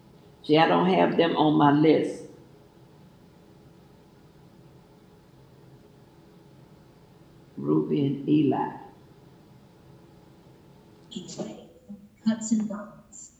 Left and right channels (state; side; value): identical; both; correlation 1.00